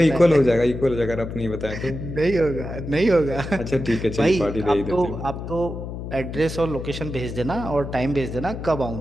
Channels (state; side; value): noise; left; hum, 8 dB below the sound